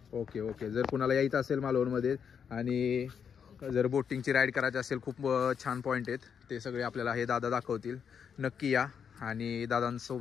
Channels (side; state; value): right; quieter; 7.2 dB